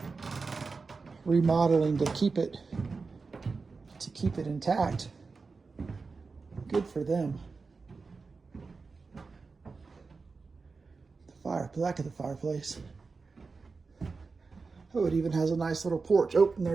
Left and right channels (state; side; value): quieter; left; 4.4 dB